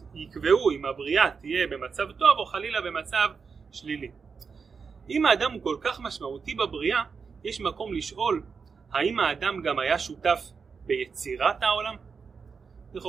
יקבעו אם הבריאה תהיה במצב טוב או חלילה במצב שלילי. אם האדם הוא כל כך משמעותי בבריאה, יש מקום לשאול, האם האדם גם היה שותף ביצירת העולם?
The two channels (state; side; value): quieter; left; 5.5 dB